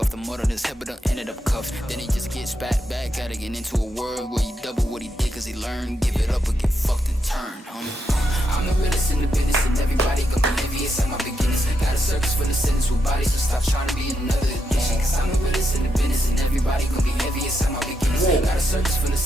the mud on his head, but done ended up cuffed. Then he just gets back at it, get into a world where he double what he did, cause he learned. Give it up or get fucked and turn, homie. I'm the realest in the business, and everybody gon' be envious at my beginnings. Got a circus for the sentence with bodies, so stop trying to be another addiction. Cause I'm the realest in the business, and everybody gon' be envious at my beginnings. Got a circus for the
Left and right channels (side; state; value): both; normal; correlation 0.82